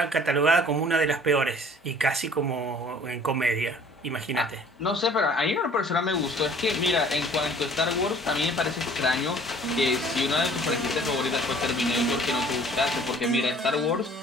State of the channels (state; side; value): normal; both; correlation 0.52